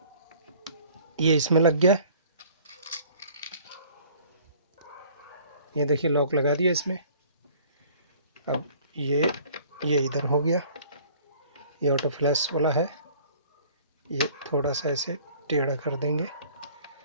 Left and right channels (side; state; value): both; inverted; correlation -0.52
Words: ये इसमें लग गया। ये देखिए लॉक लगा दिया इसमें। अब ये इधर हो गया, ये ऑटो फ्लास्क वाला है। ये थोड़ा सा ऐसे टेढ़ा कर देंगे,